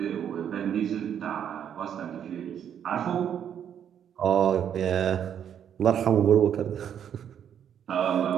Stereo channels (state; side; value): quieter; left; 9.0 dB